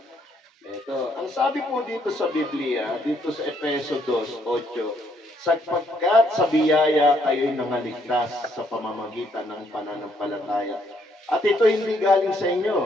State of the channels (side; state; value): both; normal; correlation 0.70